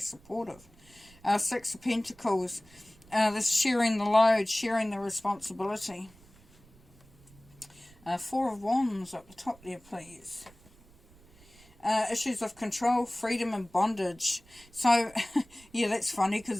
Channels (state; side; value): noise; right; rumble, 26 dB below the sound